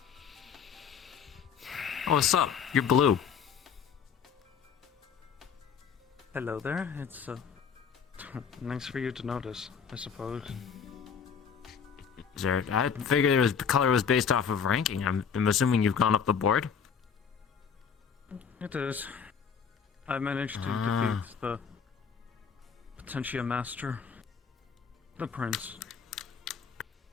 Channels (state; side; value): quieter; right; 6.8 dB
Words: Oh, what's up? You're blue. Hello there. It's nice for you to notice, I suppose. Is there? I figured the color was based off of ranking. I'm assuming you've gone up the board. It is. I managed to defeat the Potentia Master, the Prince.